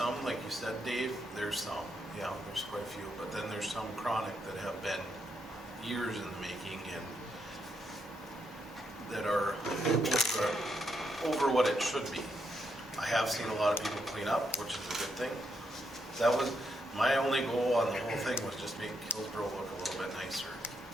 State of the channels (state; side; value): normal; both; correlation 0.79